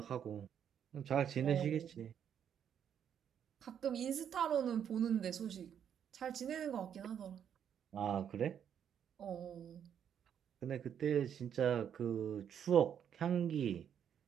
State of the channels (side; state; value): left; quieter; 8.7 dB